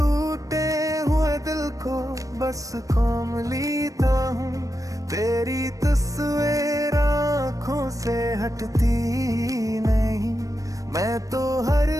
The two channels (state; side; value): late; left; 0.16 ms